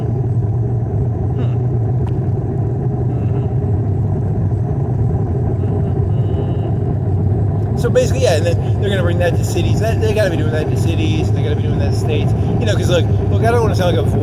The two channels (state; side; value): identical; both; correlation 1.00